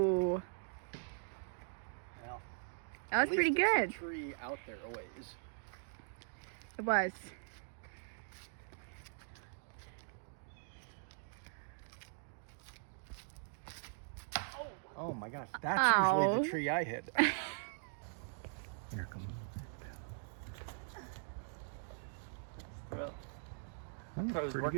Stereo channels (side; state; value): left; silent; digital silence